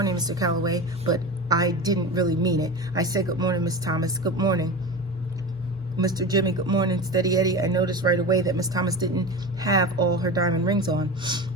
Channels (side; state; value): both; normal; correlation 0.28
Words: Mr. Calloway," but I didn't really mean it. I said, "Good morning, Miss Thomas." "Good morning, Mr. Jimmy." "Good morning, Steady Eddie." I noticed right away that Miss Thomas didn't have all her diamond rings on.